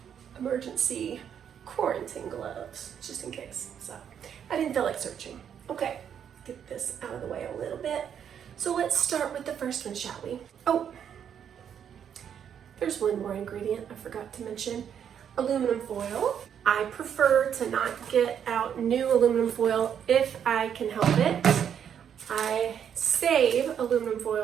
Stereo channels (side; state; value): left; quieter; 8.5 dB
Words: quarantine gloves, just in case. So I didn't feel like searching. Okay, get this out of the way a little bit. So let's start with the first one, shall we? Oh, there's one more ingredient I forgot to mention. Aluminum foil. I prefer to not get out new aluminum foil if I can help it. I save aluminum